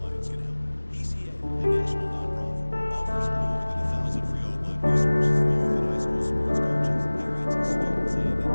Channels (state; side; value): inverted; both; correlation -1.00